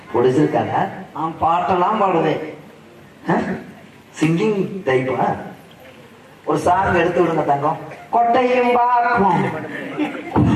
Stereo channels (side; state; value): both; identical; correlation 1.00